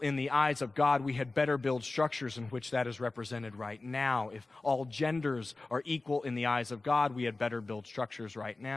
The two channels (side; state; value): right; quieter; 3.3 dB